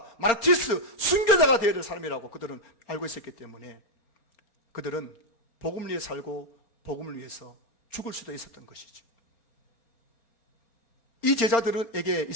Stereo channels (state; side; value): late; right; 4.3 ms